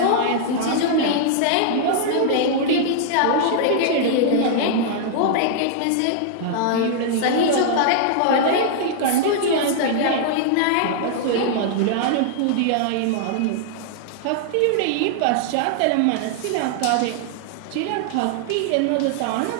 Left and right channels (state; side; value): different; both; correlation -0.01